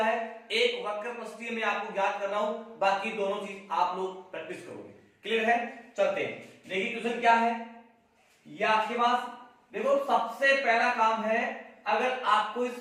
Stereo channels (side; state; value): both; identical; correlation 1.00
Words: एक वक्र पृष्ठीय में आपको ज्ञात कर रहा हूं, बाकी दोनों चीज आप लोग प्रैक्टिस करोगे। क्लियर है? चलते हैं, देखिए क्वेश्चन क्या है ये आपके पास। देखो सबसे पहला काम है, अगर आपको इस